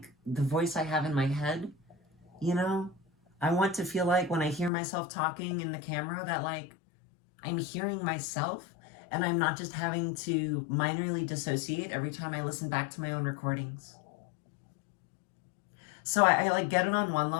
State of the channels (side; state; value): right; drops out; at 4.7 s